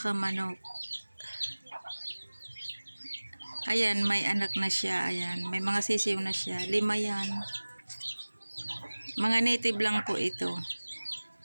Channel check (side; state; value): both; inverted; correlation -1.00